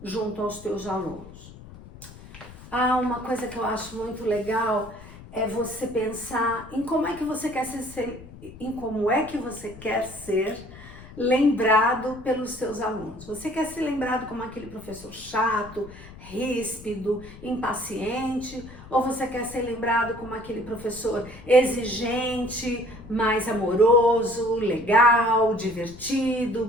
junto aos teus alunos. Uma coisa que eu acho muito legal é você pensar em como é que você quer ser lembrado pelos seus alunos. Você quer ser lembrado como aquele professor chato, ríspido, impaciente, ou você quer ser lembrado como aquele professor exigente, mais amoroso, legal, divertido,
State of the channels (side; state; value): left; noise; rumble, 17 dB below the sound